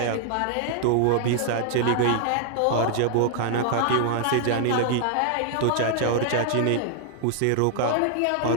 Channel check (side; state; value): both; different; correlation -0.01